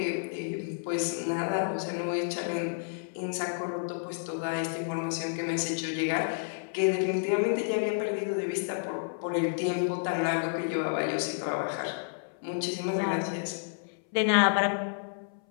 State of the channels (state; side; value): silent; right; 58 dB below the other